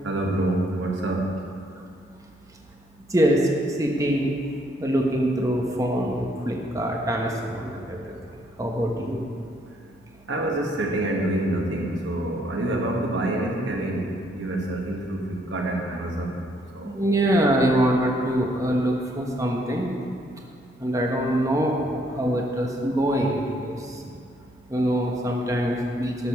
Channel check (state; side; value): noise; right; hum, 29 dB below the sound